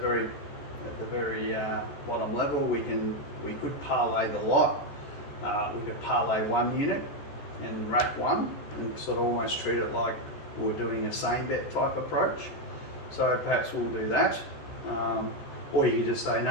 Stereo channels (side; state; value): right; late; 14 ms